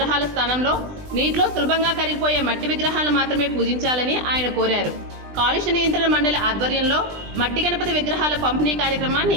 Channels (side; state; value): left; late; 20 ms